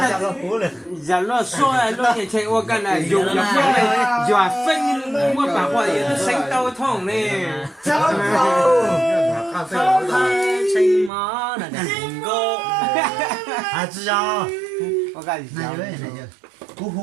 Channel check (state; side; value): drops out; left; at 11.1 s